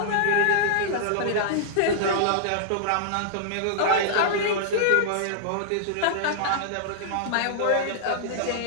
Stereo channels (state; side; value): different; both; correlation -0.01